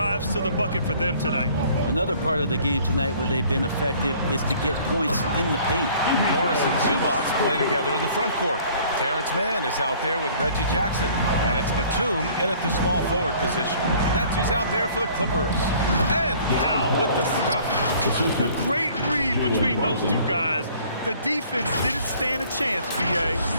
to the bucket for them tonight. Another part of the game tonight where they've been effective is to get points in the paint. Morris and Zubac play together in the front court. Terrence Mann is out there with Reggie Jackson. And it's Batum in at the small forward position. That's who's out there for the Clippers. And Powell with the stuff. A great read between those two guys. The defense didn't stand a chance,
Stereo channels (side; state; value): both; inverted; correlation -0.54